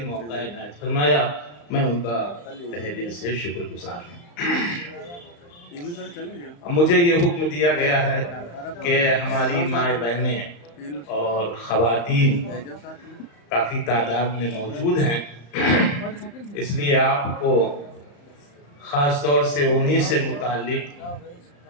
موقع عنایت فرمایا۔ میں ان کا تہہ دل سے شکر گزار ہوں۔ مجھے یہ حکم دیا گیا ہے کہ ہماری مائیں بہنیں اور خواتین کافی تعداد میں موجود ہیں، اس لیے آپ کو خاص طور سے انہی سے متعلق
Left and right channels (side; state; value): right; late; 35 ms